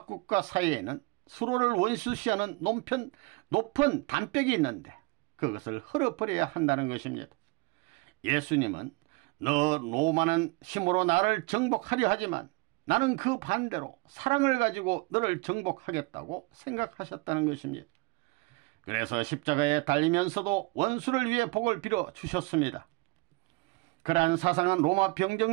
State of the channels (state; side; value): quieter; left; 26.1 dB